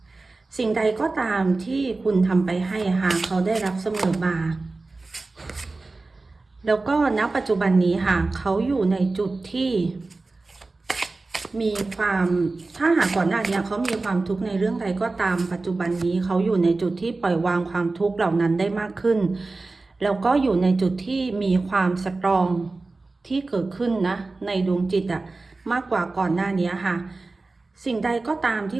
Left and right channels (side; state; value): left; quieter; 3.5 dB